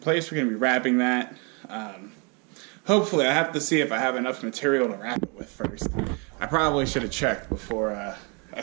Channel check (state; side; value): quieter; left; 33.5 dB